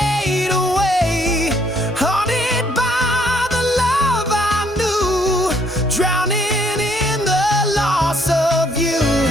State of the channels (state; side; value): normal; both; correlation 0.67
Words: away, haunted by the love I knew, drowning in the loss of you.